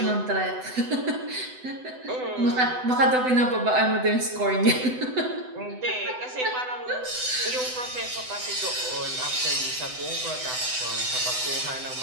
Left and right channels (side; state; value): left; late; 7.9 ms